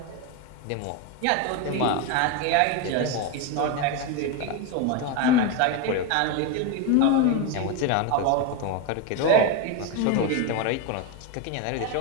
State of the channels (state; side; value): different; both; correlation 0.03